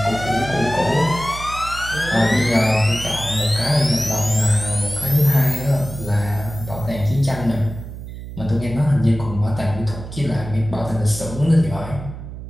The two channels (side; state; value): right; noise; hum, 11 dB below the sound